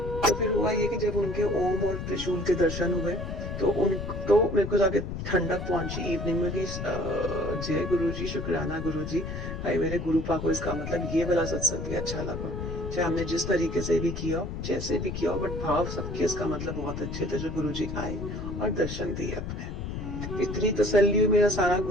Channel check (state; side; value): noise; left; rumble, 6 dB below the sound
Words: तो फिर हुआ ये कि जब उनके ओम और त्रिशूल के दर्शन हुए तो मेरे को जाके ठंडक पहुंची इवनिंग में कि जय गुरु जी, शुक्राना गुरु जी, भाई मेरे गुरु पा को इसका मतलब ये वाला सत्संग भी अच्छा लगा। चाहे हमने जिस तरीके से भी किया जैसे भी किया, बट भाव सबके इसका मतलब बहुत अच्छे थे जो गुरु जी आए और दर्शन दिए अपने। इतनी तसल्ली हुई, मेरा सारा